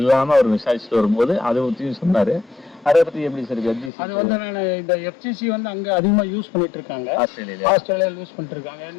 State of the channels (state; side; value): drops out; right; at 3.9 s